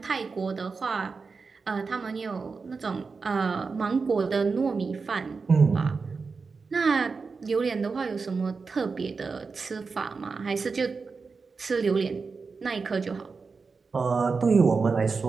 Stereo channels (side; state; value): left; quieter; 4.7 dB